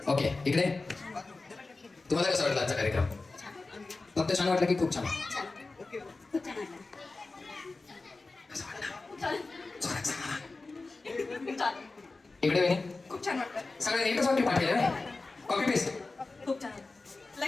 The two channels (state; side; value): quieter; right; 3.5 dB